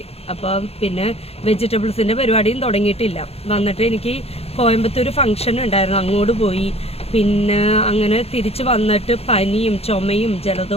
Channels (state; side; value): late; right; 0.29 ms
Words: അപ്പം പിന്നെ വെജിറ്റബിൾസിൻ്റെ പരിപാടിയും തുടങ്ങിയിട്ടില്ല. വന്നിട്ട് എനിക്ക് കോയമ്പത്തൂർ ഫംഗ്ഷൻ ഉണ്ടായിരുന്നു, അങ്ങോട്ട് പോയി. പിന്നെ അങ്ങനെ തിരിച്ച് വന്നിട്ട് പനിയും ചുമയും